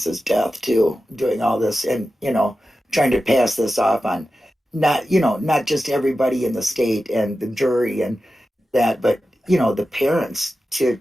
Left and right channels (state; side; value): normal; both; correlation 0.93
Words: death too, doing all this, and trying to pass this off on not just everybody in the state and the jury and that, but the parents to